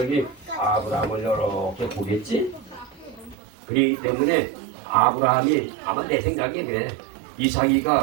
아브라함을 이렇게 보겠지? 그렇기 때문에 아브라함이 아마 내 생각에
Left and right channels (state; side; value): drops out; left; at 3.4 s